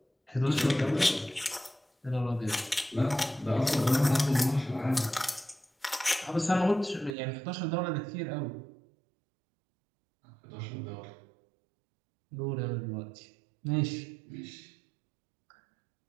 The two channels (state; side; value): drops out; left; at 7.2 s